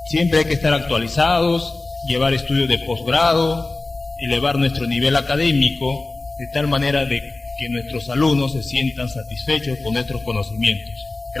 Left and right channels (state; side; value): quieter; right; 3.2 dB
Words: Siempre hay que estar actualizados, llevar estudios de posgrado, elevar nuestro nivel académico, de tal manera de que nuestros alumnos se sientan satisfechos con nuestros conocimientos.